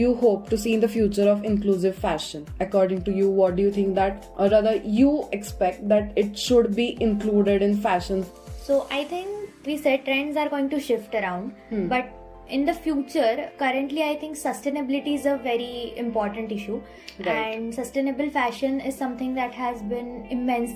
hope to see in the future of inclusive fashion? According to you, what do you think that, or rather you expect that it should be included in fashion? So I think we said trends are going to shift around, but in the future, currently I think sustainability is a very important issue. Right. And sustainable fashion is something that has been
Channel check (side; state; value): both; identical; correlation 1.00